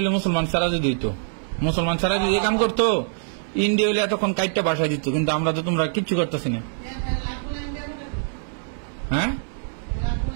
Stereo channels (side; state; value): left; silent; 63 dB below the other